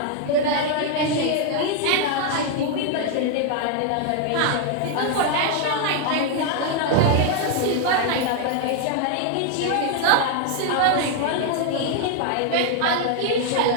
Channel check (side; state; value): both; different; correlation 0.00